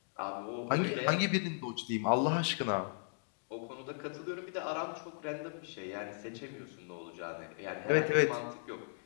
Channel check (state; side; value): silent; right; digital silence